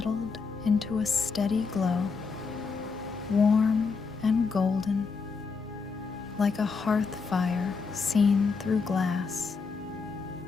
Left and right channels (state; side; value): quieter; right; 4.8 dB